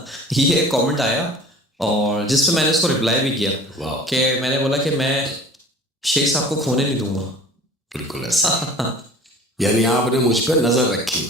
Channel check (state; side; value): normal; both; correlation 0.45